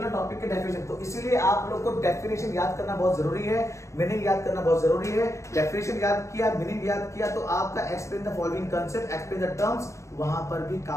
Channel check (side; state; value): right; late; 0.15 ms